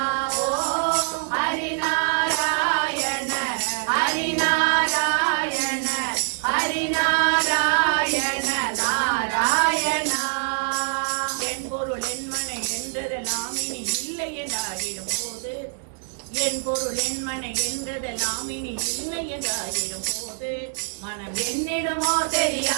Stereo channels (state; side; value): silent; left; 61 dB below the other